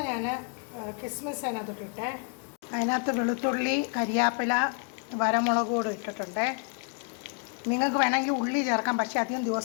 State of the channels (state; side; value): quieter; right; 38.2 dB